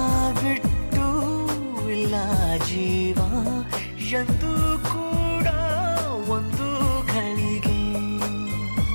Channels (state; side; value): inverted; both; correlation -1.00